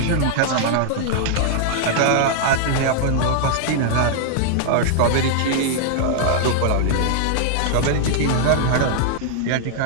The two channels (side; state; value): both; different; correlation -0.01